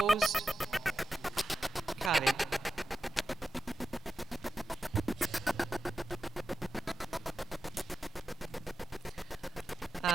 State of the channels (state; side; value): normal; both; correlation 0.91